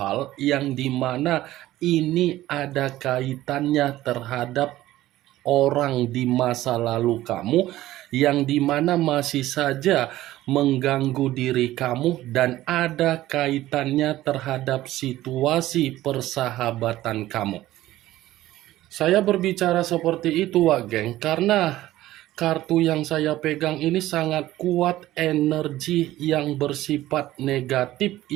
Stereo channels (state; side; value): quieter; left; 15.3 dB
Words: yang dimana ini ada kaitannya terhadap orang di masa lalu kamu yang dimana masih saja mengganggu diri kamu dan ada kaitannya terhadap situasi persahabatan kamu. Saya berbicara seperti itu, Wageng, karena kartu yang saya pegang ini sangat kuat energi yang bersifat negatif